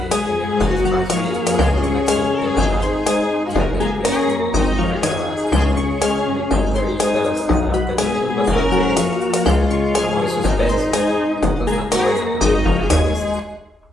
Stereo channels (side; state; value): both; normal; correlation 0.80